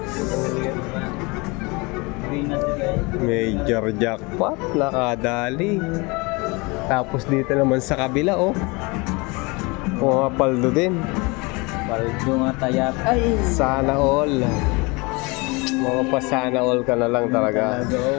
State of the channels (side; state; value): right; quieter; 26.8 dB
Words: Major jackpot. Nakadali. Tapos dito naman sa kabila, oh. Pumapaldo din. Paldo nga tayak. Ay! Sana all. Mga pa sana all ka na lang talaga.